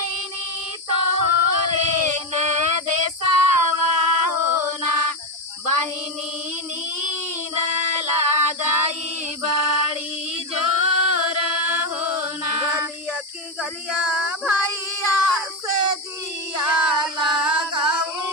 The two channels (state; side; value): normal; both; correlation 0.11